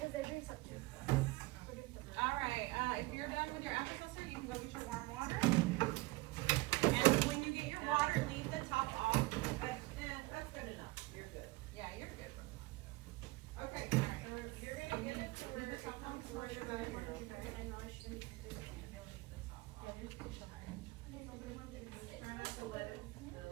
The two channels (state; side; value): quieter; left; 21.8 dB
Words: they're doing something. Alright, if you're done with your Alka-Seltzer, you can go get your warm water. And when you get your water, leave the top off. That's good enough. You're good. Yeah, you're good. Okay, alright. You're gonna get it to where the top off, where the bottom is. Try not to let it